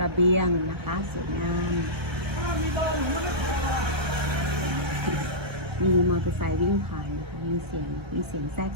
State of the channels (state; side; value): late; left; 1.3 ms